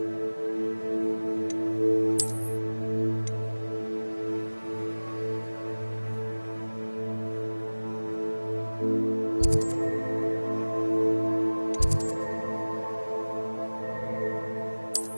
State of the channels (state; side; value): inverted; both; correlation -1.00